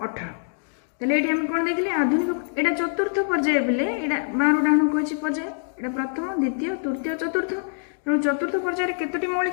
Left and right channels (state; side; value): silent; right; digital silence